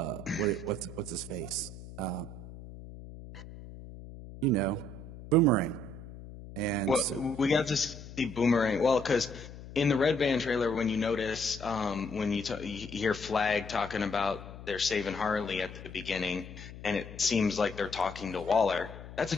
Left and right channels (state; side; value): noise; left; hum, 14 dB below the sound